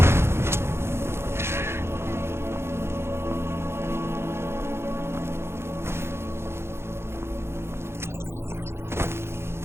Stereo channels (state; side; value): late; left; 0.12 ms